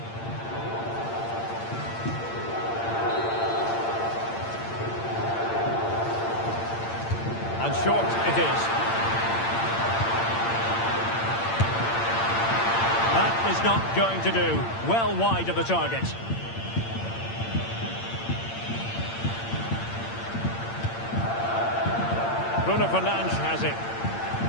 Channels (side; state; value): right; late; 8.8 ms